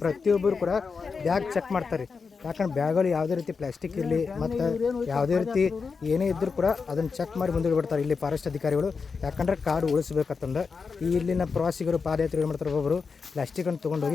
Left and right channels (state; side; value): quieter; right; 5.1 dB